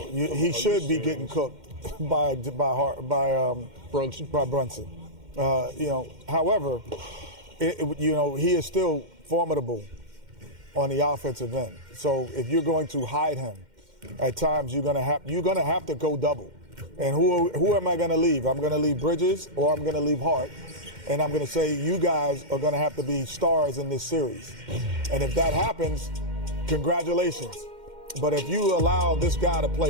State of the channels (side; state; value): left; late; 2.1 ms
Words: he should be getting cooked by Brunson. By Brunson. However, he is still formidable on the offensive end. So if you're going to hide him, at times you're gonna have to go double. And who am I going to leave? I'm going to leave Bridges or I'm going to leave Hart. And I'm going to say you guys are going to have to be stars in this series. And if that happens, congratulations. But if you allow this guy to